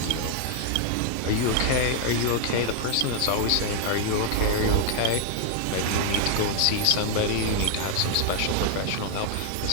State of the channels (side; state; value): both; different; correlation 0.00